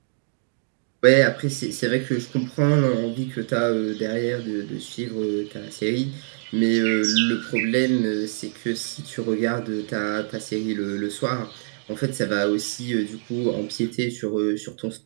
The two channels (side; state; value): left; silent; digital silence